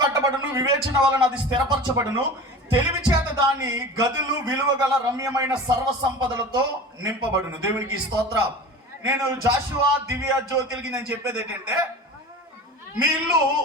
కట్టబడును, వివేచన వలన అది స్థిరపరచబడును, తెలివి చేత దాని గదులు విలువగల రమ్యమైన సర్వ సంపదలతో నింపబడును. దేవునికి స్తోత్రం. నేను జాషువా దివ్య జ్యోతిలకి నేను చెప్పేది ఏంటంటే, మీ ఇల్లు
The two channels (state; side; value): normal; both; correlation 0.34